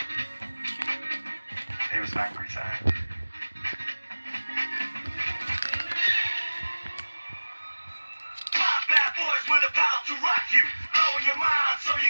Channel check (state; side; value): inverted; both; correlation -1.00